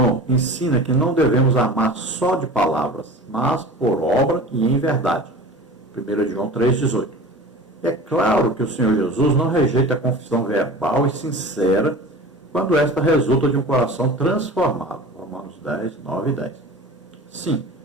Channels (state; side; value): normal; both; correlation 0.37